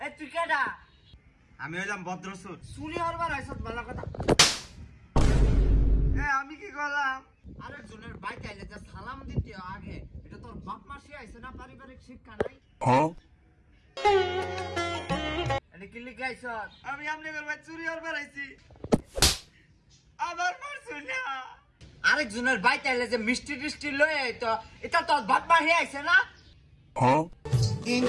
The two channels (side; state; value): both; identical; correlation 1.00